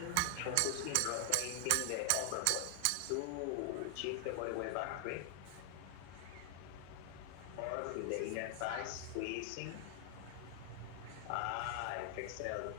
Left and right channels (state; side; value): different; both; correlation 0.00